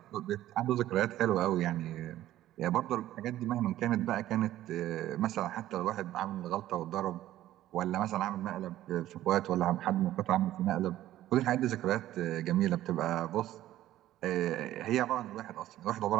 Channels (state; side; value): quieter; left; 13.9 dB